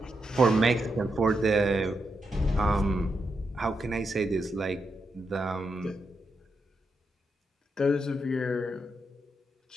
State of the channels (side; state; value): both; normal; correlation 0.84